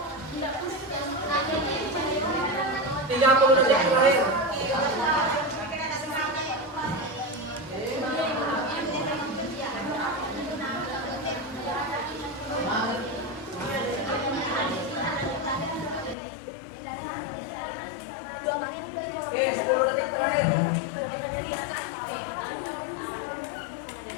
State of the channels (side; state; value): right; drops out; at 16.2 s